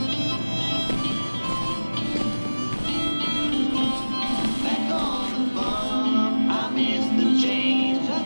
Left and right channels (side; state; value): both; inverted; correlation -1.00